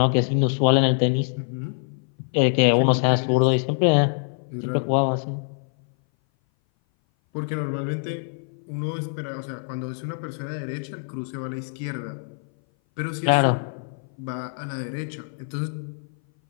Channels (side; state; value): right; silent; 58 dB below the other